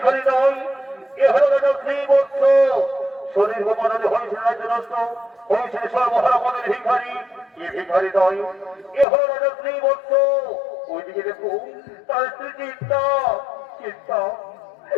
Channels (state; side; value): drops out; right; at 9.1 s